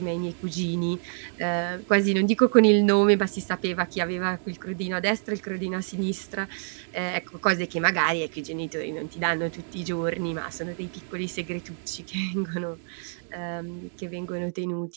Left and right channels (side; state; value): left; silent; 60 dB below the other